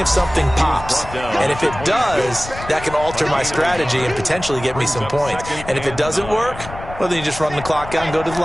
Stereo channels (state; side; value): noise; left; rumble, 13 dB below the sound